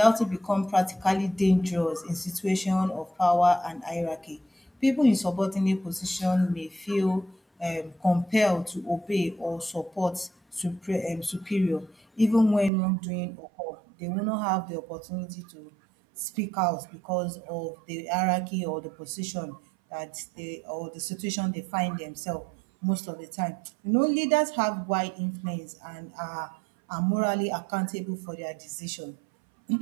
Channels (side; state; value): left; drops out; at 12.7 s